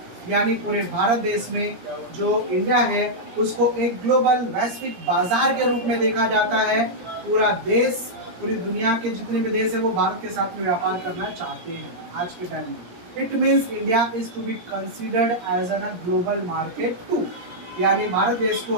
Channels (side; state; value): left; late; 17 ms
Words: यानी पूरे भारत देश में जो इंडिया है उसको एक ग्लोबल वैश्विक बाजार के रूप में देखा जाता है। पूरा देश, पूरी दुनिया के जितने भी देश है वो भारत के साथ में व्यापार करना चाहते हैं आज के टाइम में। It means India is to be considered as an a global market too, यानी भारत देश को